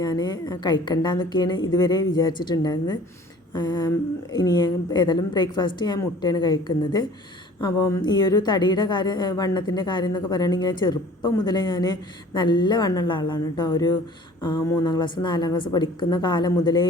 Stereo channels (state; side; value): normal; both; correlation 0.49